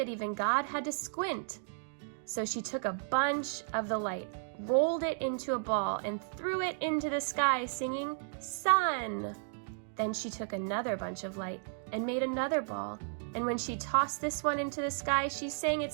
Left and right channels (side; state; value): left; silent; digital silence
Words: even God had to squint. So she took a bunch of the light, rolled it into a ball, and threw it into the sky, singing, "Sun!" Then she took another bunch of light and made another ball. And when she tossed this one into the sky, she sang